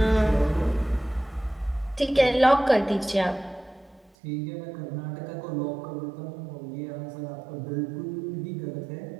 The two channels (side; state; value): left; drops out; at 4.1 s